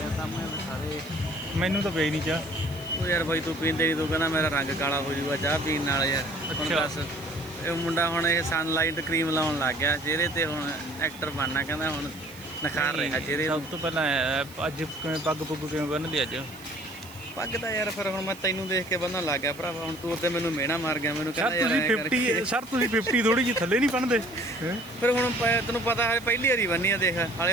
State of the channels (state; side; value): noise; right; hiss, 20 dB below the sound